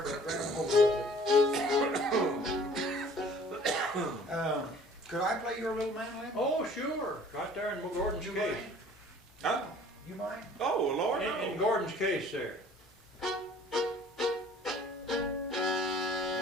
grab hold of it. Could I play your little mandolin? Oh, sure, right there in Gordon's You case. mind? Huh? You mind? Oh, Lord, In no. Gordon's case there.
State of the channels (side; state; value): both; normal; correlation 0.52